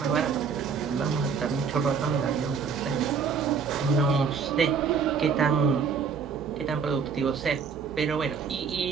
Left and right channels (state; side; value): quieter; left; 5.9 dB